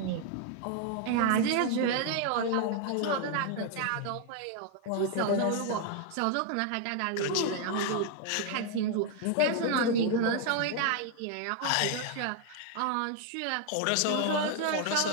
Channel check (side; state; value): both; different; correlation 0.00